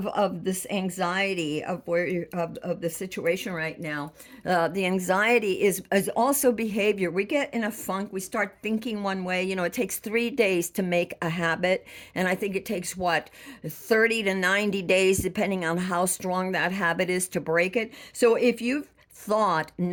this anxiety of of the situation right now. The anxiety is also behavior. We get in a funk. We start thinking one way. It takes 3 days to make a habit, and I think it takes 30 to 90 days, depending on how strong that habit is, to break it. So if you've thought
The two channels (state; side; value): identical; both; correlation 1.00